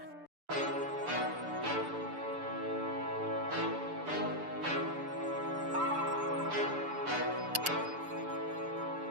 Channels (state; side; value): late; left; 6.9 ms